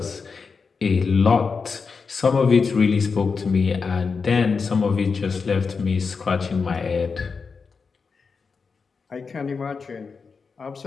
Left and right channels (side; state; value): right; quieter; 5.1 dB